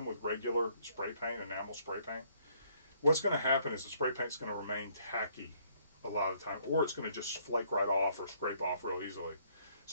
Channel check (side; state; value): both; inverted; correlation -0.66